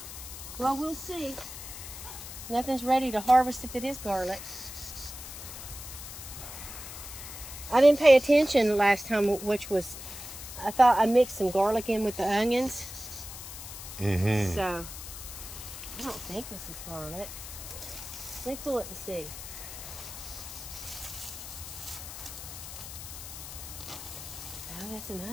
Well, we'll see. Nothing's ready to harvest if it is garlic. I didn't pay attention last time, which was, I thought I mixed some garlic in with the onions. So, I don't think this is garlic. Let me pull it and see. Oh, that's an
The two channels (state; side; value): noise; left; hiss, 11 dB below the sound